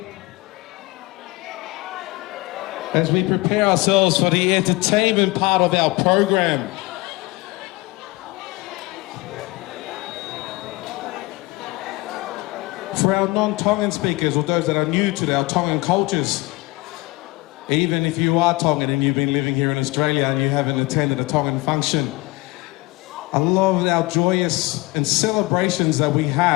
As we prepare ourselves for the entertainment part of our program. For our non-Tongan speakers, or those that are new to our Tongan cultures, even if you are Tongan and you've been living here in Australia and you haven't attended a Tongan function, a lot of our joyous and celebrations that we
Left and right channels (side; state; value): right; quieter; 22.3 dB